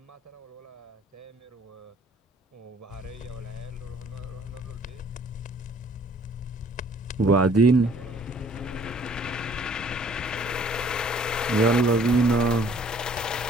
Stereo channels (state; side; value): normal; both; correlation 0.57